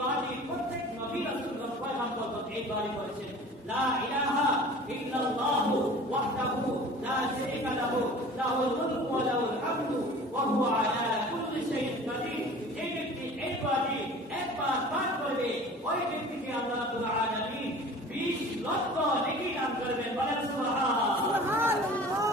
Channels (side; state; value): both; normal; correlation 0.43